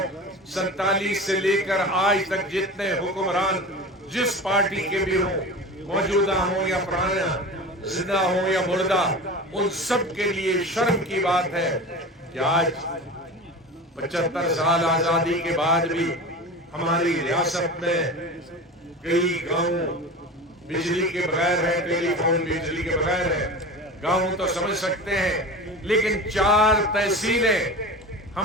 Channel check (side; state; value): both; normal; correlation 0.32